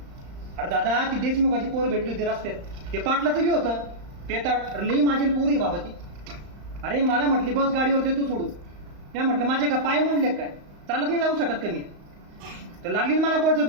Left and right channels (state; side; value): late; left; 35 ms